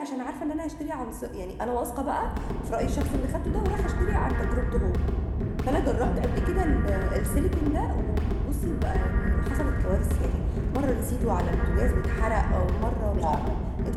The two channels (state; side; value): identical; both; correlation 1.00